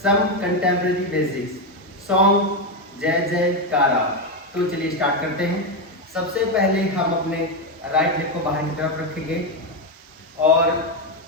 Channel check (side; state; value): both; normal; correlation 0.08